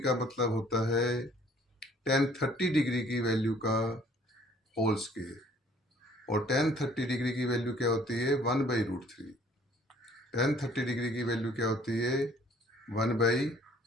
मतलब होता है tan 30 डिग्री की वैल्यू का होल स्क्वायर और tan 30 डिग्री की वैल्यू क्या होती है 1/√3। tan 30 डिग्री की वैल्यू क्या होती है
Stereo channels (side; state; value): both; normal; correlation 0.58